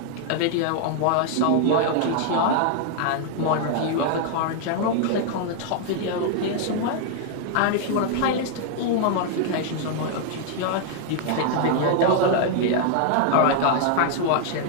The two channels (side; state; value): both; different; correlation 0.00